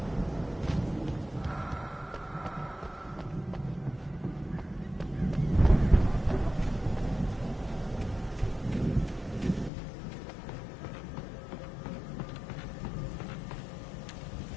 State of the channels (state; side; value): drops out; right; at 9.7 s